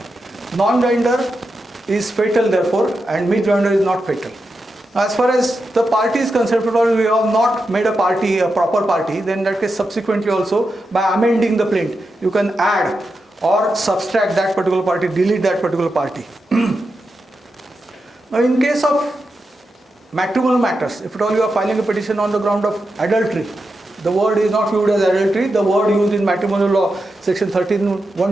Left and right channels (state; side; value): normal; both; correlation 0.88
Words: Non-joinder is fatal therefore, and misjoinder is not fatal. As far as the party is concerned, if we have not made a party, a proper party, then in that case subsequently also by amending the plaint, you can add or subtract that particular party, delete that particular party. Now in case of matrimonial matters, if at all you are filing a petition on the ground of adultery, the word is not used as adultery, the word used in matrimonial law, section